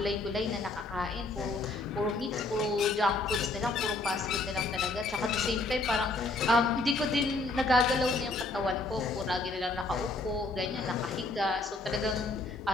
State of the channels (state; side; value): quieter; right; 3.2 dB